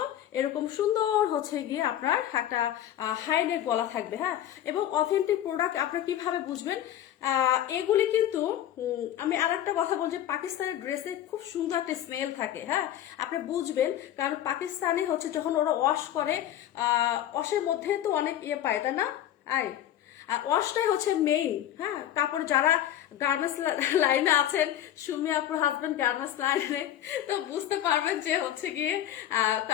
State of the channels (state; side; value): quieter; right; 11.7 dB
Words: এরকম সুন্দর হচ্ছে গিয়ে আপনার একটা হাই নেক গলা থাকবে, হ্যাঁ এবং অথেন্টিক প্রোডাক্ট আপনার কিভাবে বুঝবেন, এগুলি কিন্তু আমি আর একটা কথা বলছি, পাকিস্তানের ড্রেসে খুব সুন্দর একটা স্মেল থাকে, হ্যাঁ আপনি বুঝবেন, কারণ পাকিস্তানে হচ্ছে যখন ওরা ওয়াশ করে ওয়াশের মধ্যে তো অনেক পায় তাই না, আয় আর ওয়াশটাই হচ্ছে মেইন, হ্যাঁ কাপড় যারা গার্মেন্টস লাইনে আছেন, সুমি আপুর হাজবেন্ড গার্মেন্টস লাইনে, তো বুঝতে পারবেন যে হচ্ছে গিয়ে